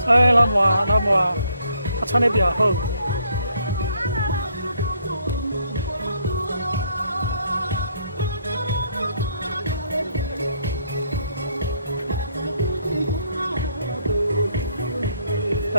哎，老母啊，他穿的比较厚。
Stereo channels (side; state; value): both; inverted; correlation -0.70